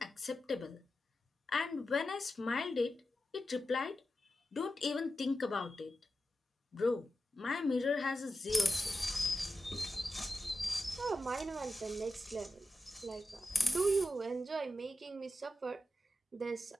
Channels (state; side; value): normal; both; correlation 0.90